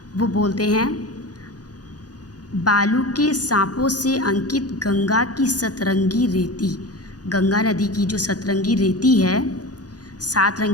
वो बोलते हैं, बालू के सांपों से अंकित गंगा की सतरंगी रेती। गंगा नदी की जो सतरंगी रेती है, 7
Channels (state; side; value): late; right; 0.68 ms